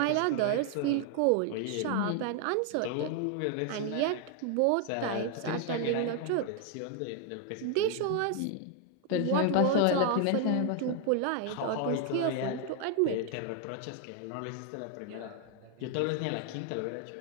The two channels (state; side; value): different; both; correlation 0.00